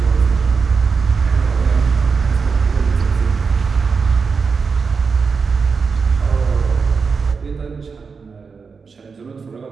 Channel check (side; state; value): left; quieter; 5.2 dB